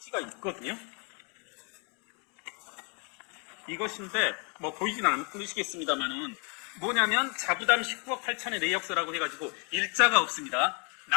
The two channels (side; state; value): right; quieter; 36.2 dB